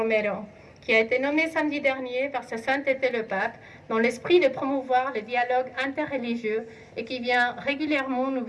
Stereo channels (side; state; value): both; identical; correlation 1.00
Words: qui a été nommé samedi dernier par sa sainteté le pape dans l'esprit de promouvoir le dialogue interreligieux et qui vient régulièrement nous